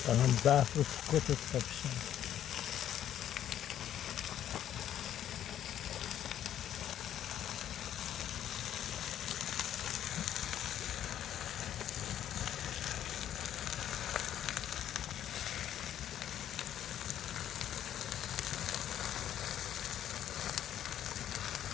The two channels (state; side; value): quieter; right; 10.8 dB